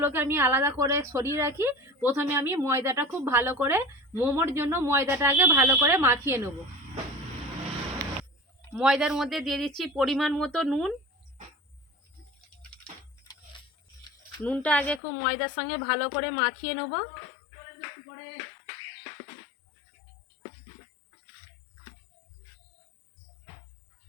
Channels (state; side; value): drops out; right; at 15.0 s